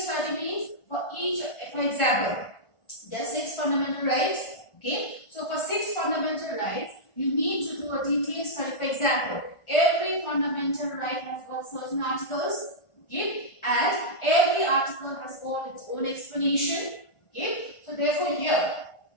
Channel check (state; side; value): late; right; 1.5 ms